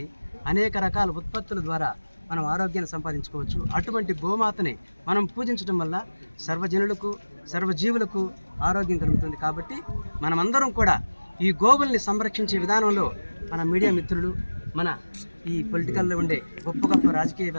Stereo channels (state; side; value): inverted; both; correlation -1.00